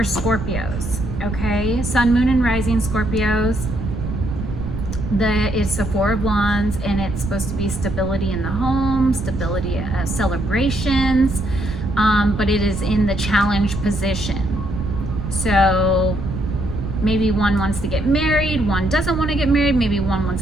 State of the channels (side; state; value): right; noise; rumble, 5 dB below the sound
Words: Scorpios. Okay, Sun, Moon, and Rising Scorpios. It's the Four of Wands, and it's supposed to be stability in the home, stability, celebrations, but it is in the challenge position. So maybe one wants to get married, one doesn't want to get married, maybe one